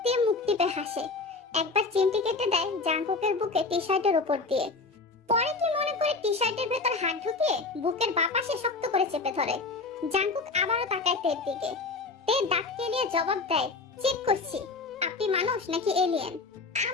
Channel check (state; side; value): quieter; right; 3.9 dB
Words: তে মুখ টিপে হাসে। একবার চিমটি কেটে দেয় জাংকুকের বুকে টি শার্টের উপর দিয়ে। পরে কি মনে করে টি শার্টের ভেতর হাত ঢুকিয়ে বুকের বাঁ পাশে শক্ত করে চেপে ধরে। জাংকুক আবারও তাকায় তের দিকে। তে দাঁত কেলিয়ে জবাব দেয়, চেক করছি আপনি মানুষ নাকি এলিয়েন।